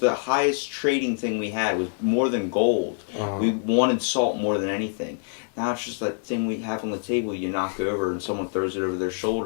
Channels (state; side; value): silent; right; digital silence